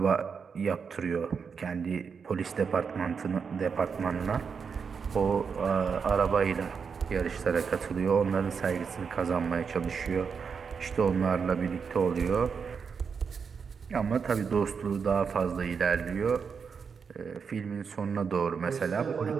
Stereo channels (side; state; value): left; quieter; 6.0 dB